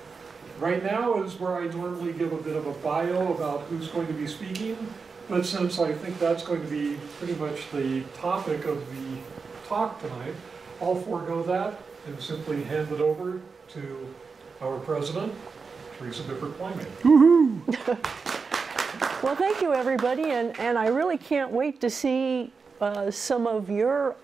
Right now is where I normally give a bit of a bio about who's going to be speaking, but since I think that's going to be pretty much the topic of the talk tonight, I'll forego that and simply hand it over to our president, Teresa Bippert Plymate. Woohoo! Well, thank you, everybody, and I really can't wait to see some of your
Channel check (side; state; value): left; quieter; 4.9 dB